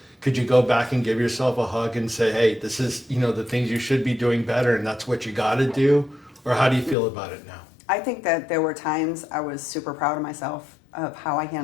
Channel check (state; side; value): drops out; right; at 7.0 s